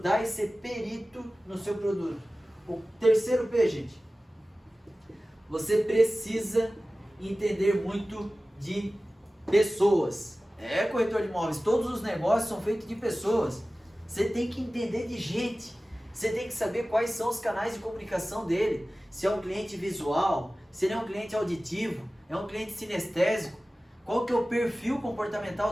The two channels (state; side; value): normal; both; correlation 0.96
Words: e ser perito no seu produto. O terceiro P, gente. Você precisa entender muito de pessoas. É, corretor de imóveis, todos os negócios são feitos de pessoas. Você tem que entender de gente. Você tem que saber quais são os canais de comunicação dele. Se é um cliente visual, se ele é um cliente auditivo, é um cliente sinestésico. Qual que é o perfil